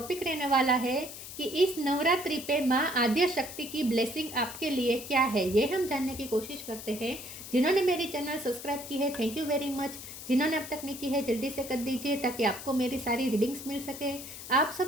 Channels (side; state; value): left; noise; hiss, 11 dB below the sound